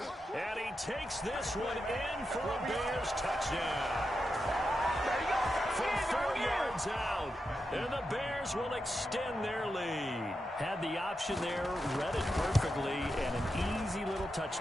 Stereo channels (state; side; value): normal; both; correlation 0.88